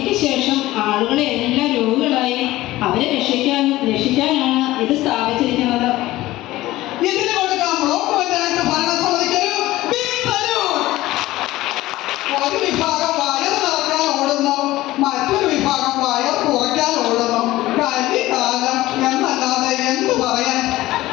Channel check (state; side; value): quieter; right; 17.0 dB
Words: ശേഷം ആളുകളെ എല്ലാം രോഗികളായി അവരെ രക്ഷിക്കാനാണ് ഇത് സ്ഥാപിച്ചിരിക്കുന്നത്. ഇതിന് കൊടുക്കാം ബ്ലോക്ക് പഞ്ചായത്ത് ഭരണസമിതിക്കൊരു ബിഗ് സല്യൂട്ട്. ഒരു വിഭാഗം വയർ നിറക്കാൻ ഓടുന്നു, മറ്റൊരു വിഭാഗം വയർ കുറയ്ക്കാൻ ഓടുന്നു. കലികാലം എന്നല്ലാതെ എന്ത് പറയാൻ?